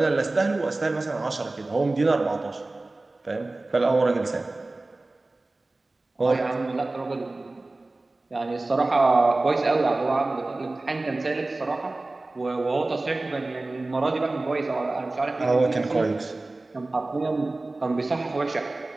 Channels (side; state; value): left; quieter; 3.0 dB